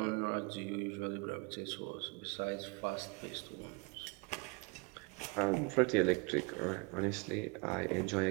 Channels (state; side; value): quieter; left; 29.6 dB